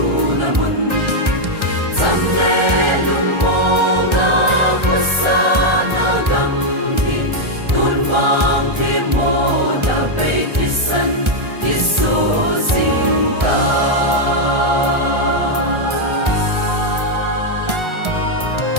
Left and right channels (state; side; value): late; left; 1.3 ms